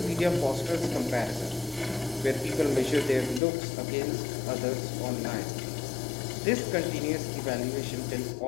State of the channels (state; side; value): drops out; right; at 3.4 s